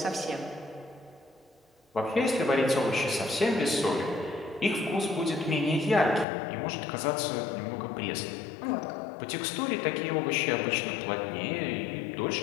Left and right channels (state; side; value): drops out; right; at 6.2 s